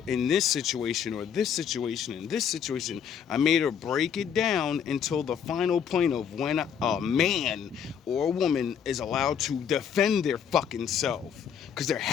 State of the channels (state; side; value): quieter; right; 7.9 dB